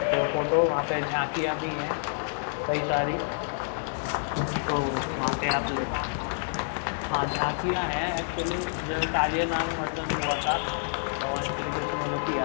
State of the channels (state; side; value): silent; right; digital silence